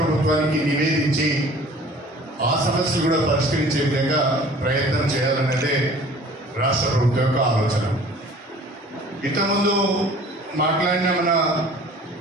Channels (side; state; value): both; normal; correlation 0.48